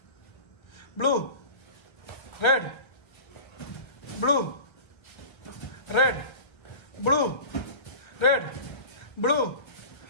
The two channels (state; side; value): late; right; 1.3 ms